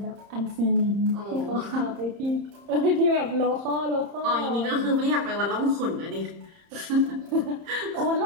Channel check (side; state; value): left; late; 30 ms